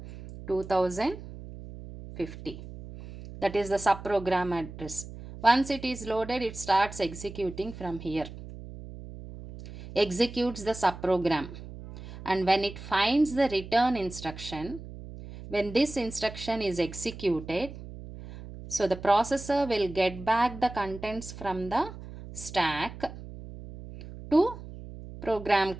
2050. That is the subprogram address. Once it is loaded, it starts executing from here. Executes the subprogram. And when it finds the return instruction, When this instruction is executed, so the processor will get back the contents from the stack to program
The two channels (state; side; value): noise; right; hum, 13 dB below the sound